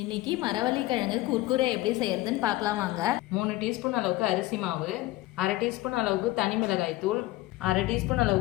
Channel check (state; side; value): quieter; right; 17.9 dB